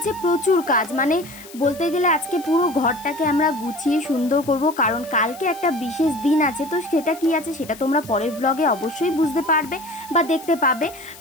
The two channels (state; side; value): noise; left; hiss, 19 dB below the sound